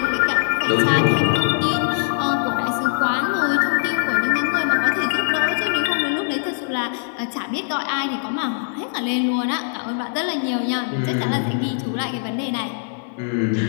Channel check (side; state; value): right; silent; 65 dB below the other